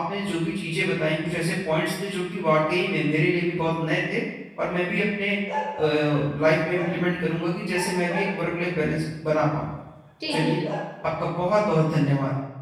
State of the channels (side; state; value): both; identical; correlation 1.00